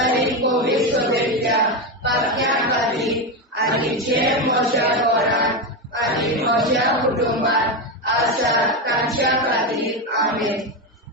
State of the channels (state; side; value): normal; both; correlation 0.12